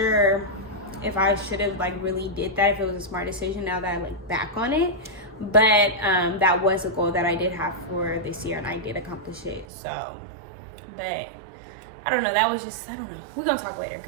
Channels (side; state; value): left; drops out; at 9.7 s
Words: if I should have like really did that, if it was a smart decision now that I look back on it. But that was a goal that I did have for this year, and I did accomplish it. So, but I don't know. That was just, I don't know. We're gonna talk later